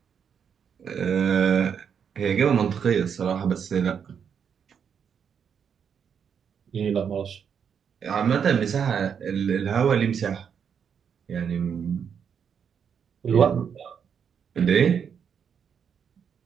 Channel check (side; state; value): left; quieter; 7.3 dB